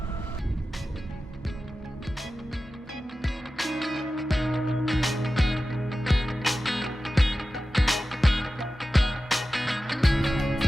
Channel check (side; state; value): both; normal; correlation 0.94